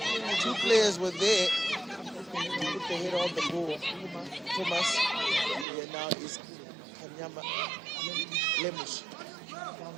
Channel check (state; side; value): drops out; left; at 5.7 s